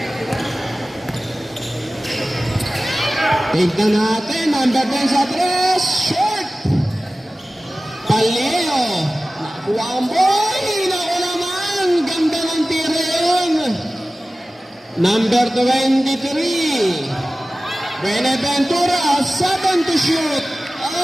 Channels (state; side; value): normal; both; correlation 0.96